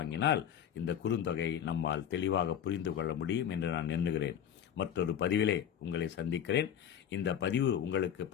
இந்த குறுந்தொகை நம்மால் தெளிவாக புரிந்து கொள்ள முடியும் என்று நான் எண்ணுகிறேன். மற்றொரு பதிவிலே உங்களை சந்திக்கிறேன். இந்த பதிவு உங்களுக்கு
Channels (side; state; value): right; quieter; 9.4 dB